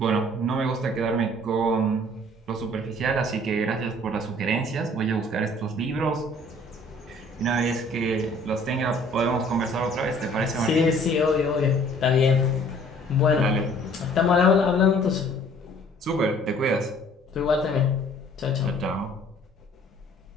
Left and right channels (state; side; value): normal; both; correlation 0.55